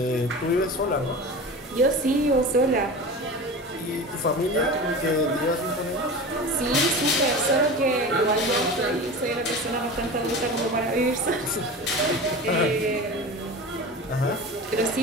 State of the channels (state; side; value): normal; both; correlation 0.32